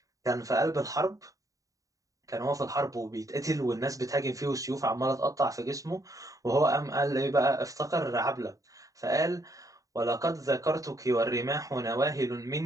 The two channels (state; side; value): late; left; 0.16 ms